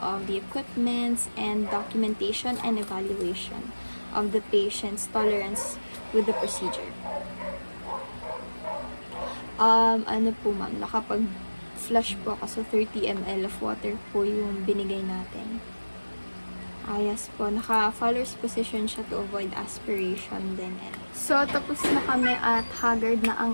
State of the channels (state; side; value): inverted; both; correlation -1.00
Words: the equipments, and documentation and evaluation of the patient's tolerance with the procedure. Ano po ma'am, nakapag-flush po ako, so 30 ml of water po yung binigay natin. Yes po, naka-Fowler's position siya to avoid aspiration din. So, tapos na kami at haggard na